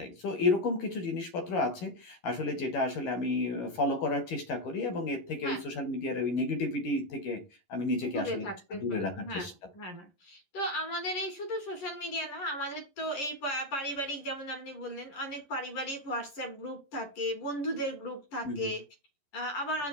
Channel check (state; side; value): late; right; 11 ms